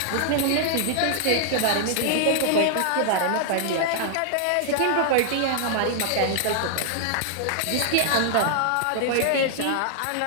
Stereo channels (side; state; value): both; different; correlation -0.01